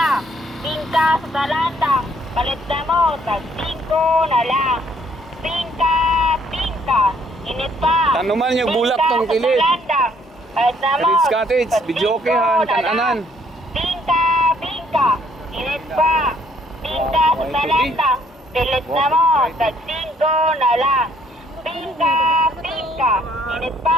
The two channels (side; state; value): both; normal; correlation 0.65